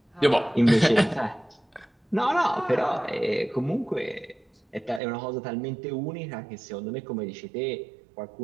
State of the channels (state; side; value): drops out; left; at 5.0 s